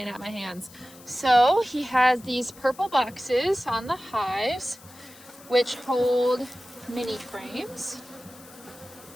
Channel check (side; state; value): left; noise; hiss, 21 dB below the sound